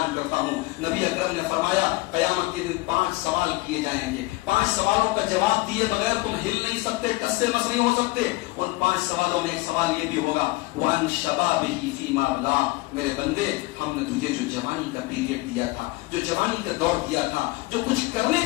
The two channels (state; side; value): quieter; right; 22.3 dB